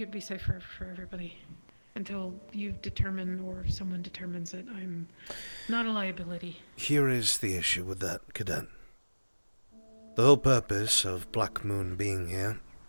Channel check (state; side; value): inverted; both; correlation -1.00